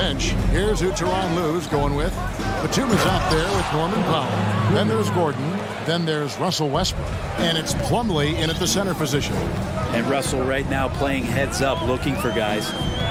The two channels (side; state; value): both; identical; correlation 1.00